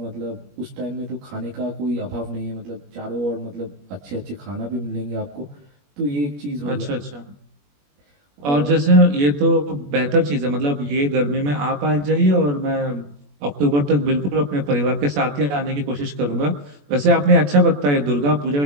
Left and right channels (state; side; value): late; left; 21 ms